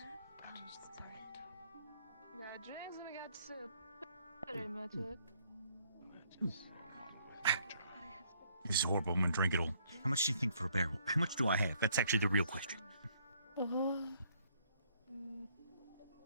got drinks and we got soup. Pretty much it. This is horrible. I'm going to drink it all. How much do you think for a barrel? How much do I have? That's actually the real question.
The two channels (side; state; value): both; inverted; correlation -0.66